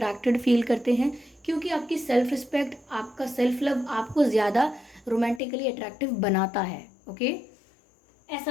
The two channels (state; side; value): drops out; right; at 5.4 s